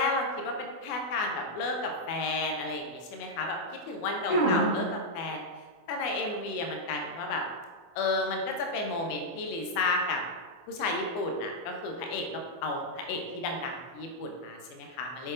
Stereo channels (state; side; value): late; right; 24 ms